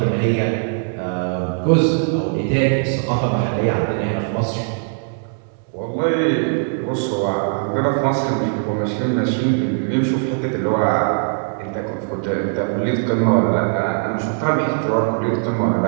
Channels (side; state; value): left; silent; 66 dB below the other